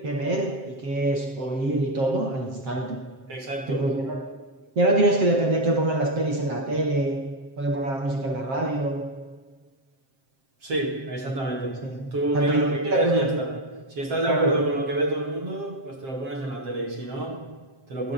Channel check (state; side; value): late; left; 7.5 ms